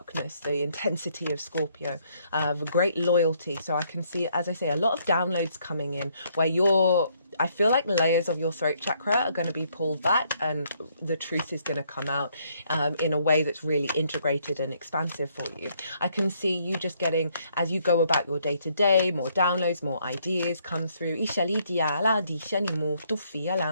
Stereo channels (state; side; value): inverted; both; correlation -0.69